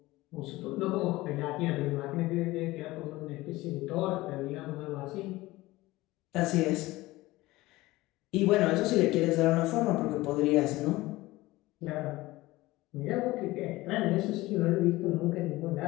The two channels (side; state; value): right; quieter; 19.0 dB